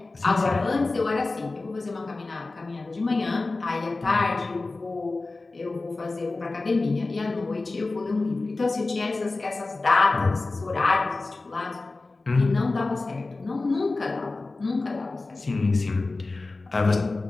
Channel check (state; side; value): quieter; right; 3.4 dB